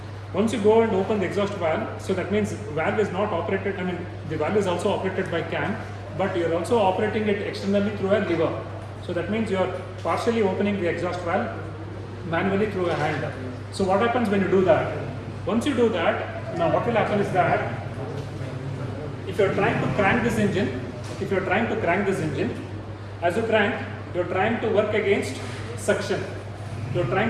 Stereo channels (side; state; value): both; identical; correlation 1.00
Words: Once you go and open the exhaust valve, so that means valve is not operated, the valve is also operated by cam, but you're also operating it externally through a lever. So that means you're partially opening the exhaust valve manually through a hand. So what happens when you do that? Once you do that, now what will happen is that if you're trying to crank this engine, as you crank, you're trying to work against suction. You're